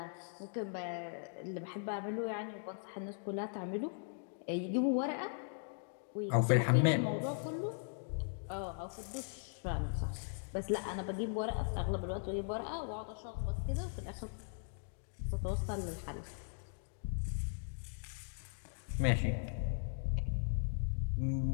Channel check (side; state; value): right; silent; digital silence